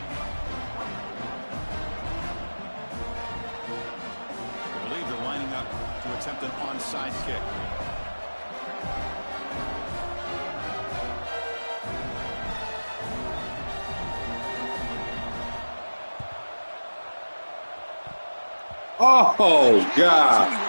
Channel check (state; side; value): inverted; both; correlation -1.00